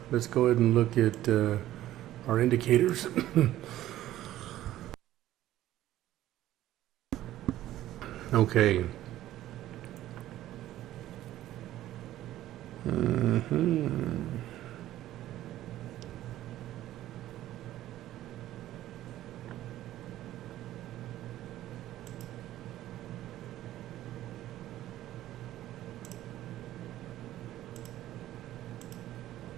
Let's go ahead and look at our indicators. Okay.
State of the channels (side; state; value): left; quieter; 13.9 dB